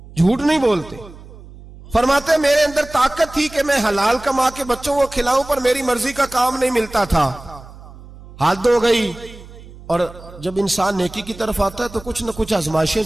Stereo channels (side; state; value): right; noise; hum, 18 dB below the sound